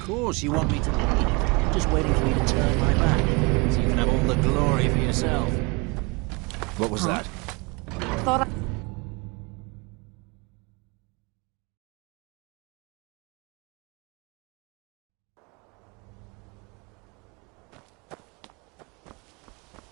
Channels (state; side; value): quieter; left; 27.9 dB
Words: course you want me to lead. Just waiting for you to turn my back, so you can have all the glory for yourself. What was that? Thought I...